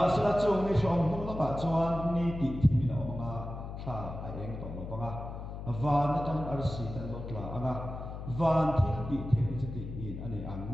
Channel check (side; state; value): left; noise; hum, 8 dB below the sound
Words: sa chung ni shom nu la ka chuan ni ti thi na ma tha ai eng to lo panga van na tan ar si tan lo tla anga van thi ti the ti in ani ang